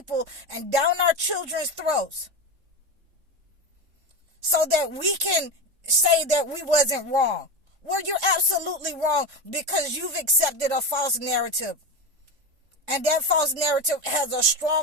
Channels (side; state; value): left; late; 3.7 ms